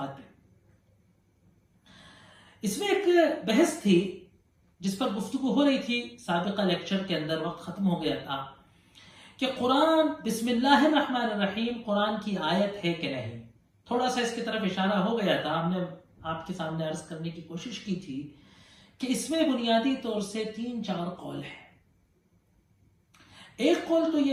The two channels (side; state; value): both; identical; correlation 1.00